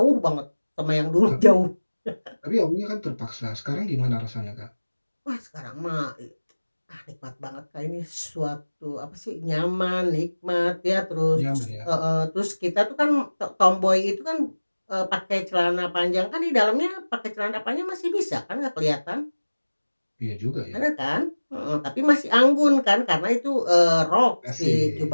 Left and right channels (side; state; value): both; inverted; correlation -1.00